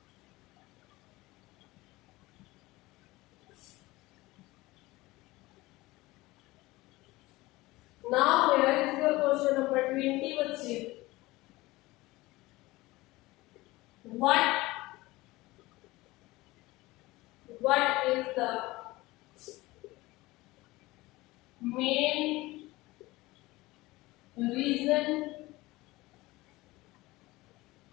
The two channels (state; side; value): quieter; right; 20.0 dB